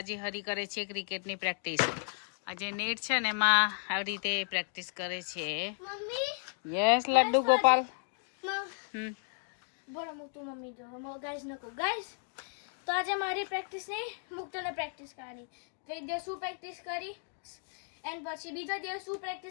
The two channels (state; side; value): silent; right; 55 dB below the other